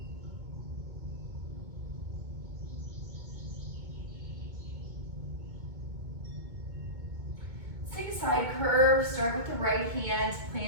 Let's take a side curve. Start with the right hand,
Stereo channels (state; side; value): late; left; 2.2 ms